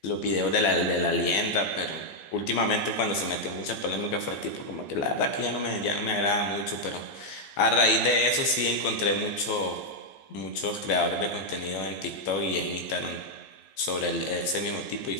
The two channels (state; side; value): late; right; 15 ms